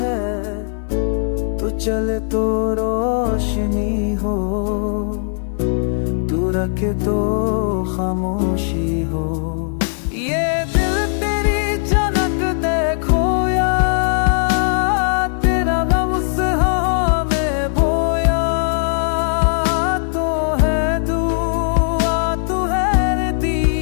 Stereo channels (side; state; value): right; silent; 61 dB below the other